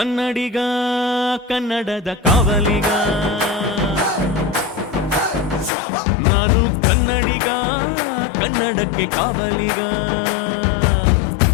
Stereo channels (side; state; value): right; drops out; at 5.7 s